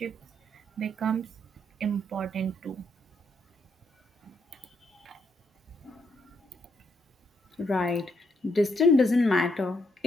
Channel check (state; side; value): normal; both; correlation 0.76